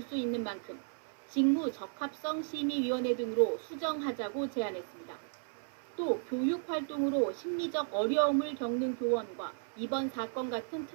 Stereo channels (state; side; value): silent; left; 55 dB below the other